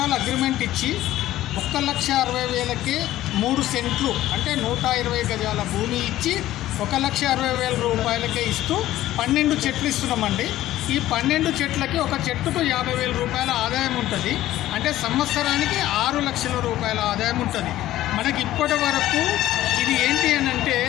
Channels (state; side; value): quieter; right; 14.5 dB